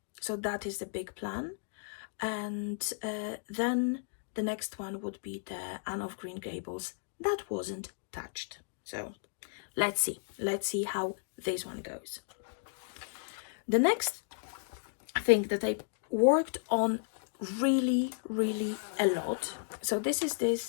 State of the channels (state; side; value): silent; right; digital silence